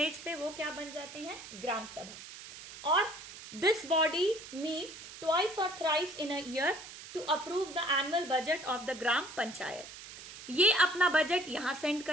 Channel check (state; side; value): noise; right; hiss, 14 dB below the sound